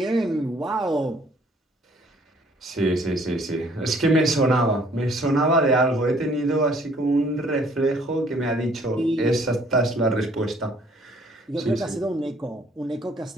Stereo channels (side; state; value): both; normal; correlation 0.60